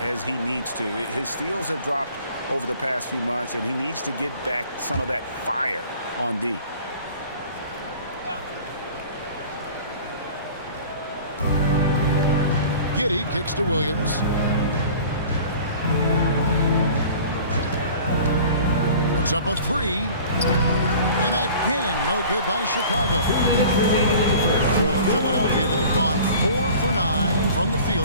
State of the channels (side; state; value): both; inverted; correlation -0.45